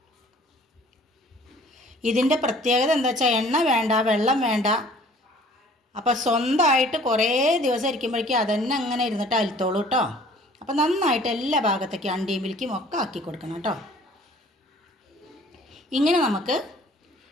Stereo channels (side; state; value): both; normal; correlation 0.53